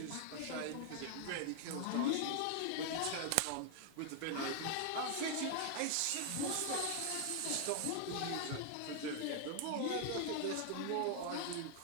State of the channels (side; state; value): both; different; correlation 0.00